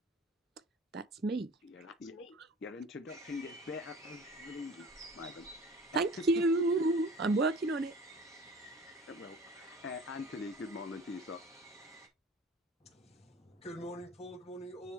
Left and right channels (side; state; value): both; normal; correlation 0.43